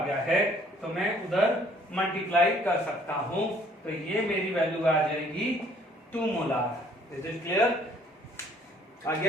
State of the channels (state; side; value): normal; both; correlation 0.60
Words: है, तो मैं उधर मल्टीप्लाई कर सकता हूं, तो ये मेरी वैल्यू आ जाएगी 2 मोलार। Is it clear? आ